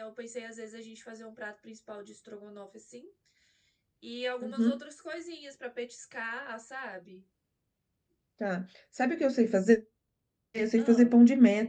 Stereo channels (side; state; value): both; identical; correlation 1.00